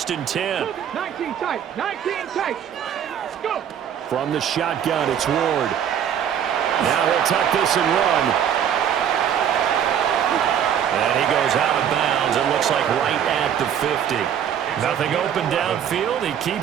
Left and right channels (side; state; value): left; quieter; 9.1 dB